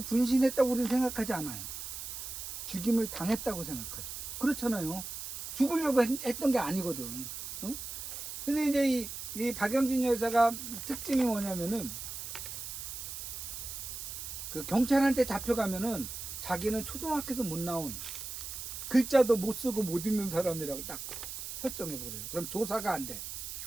분신했다고 우리는 생각하지 않아요. 죽임을 당했다고 생각하죠. 그렇잖아요. 죽으려고 했던 게 아니거든. 응? 근데 이제 이 박영진 여사가 특징이 뭐냐면은 그 경찰한테 잡혀가면은 자기는 초등학교도 못 나온 글자도 못 쓰고 못 읽는 사람이라고 딱 설정해 버려요. 그럼 조사가 안 돼.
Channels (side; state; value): right; noise; hiss, 7 dB below the sound